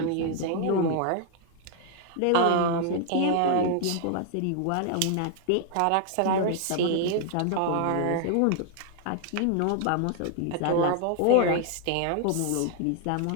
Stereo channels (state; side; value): different; both; correlation 0.00